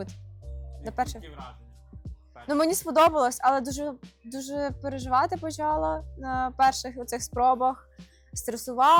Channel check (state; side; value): identical; both; correlation 1.00